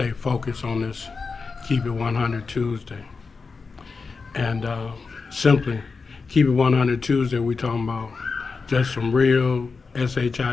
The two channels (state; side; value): quieter; right; 4.6 dB